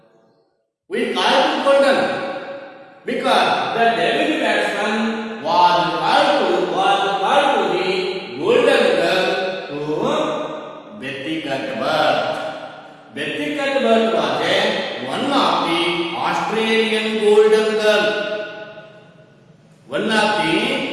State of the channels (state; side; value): identical; both; correlation 1.00